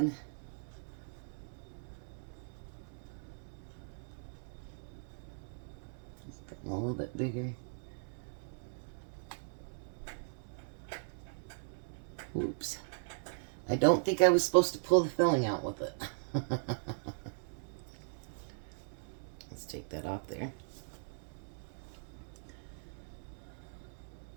Getting a little bit bigger. Oops. I don't think I was supposed to pull the filling out with it. Let's take that off there.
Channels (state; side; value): silent; left; 52 dB below the other